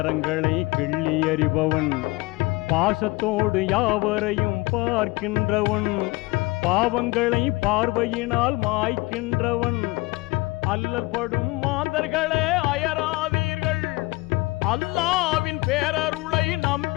கிள்ளி எறிபவன், பாசத்தோடு யாவரையும் பார்க்கின்றவன், பாவங்களை பார்வையினால் மாய்க்கின்றவன். அல்லல் படும் மாந்தர்களே அயராதீர்கள், அல்லாவின் பேரருளை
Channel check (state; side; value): quieter; right; 23.3 dB